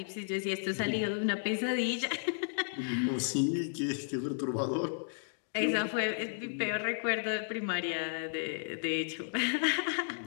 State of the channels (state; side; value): silent; right; digital silence